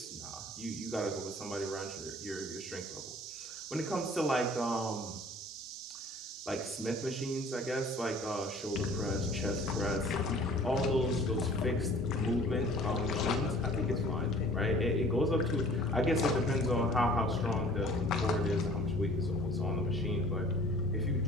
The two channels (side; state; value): both; normal; correlation 0.50